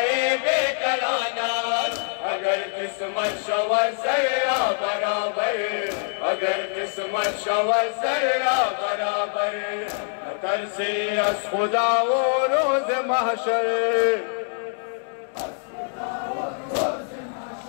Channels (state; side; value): silent; right; 62 dB below the other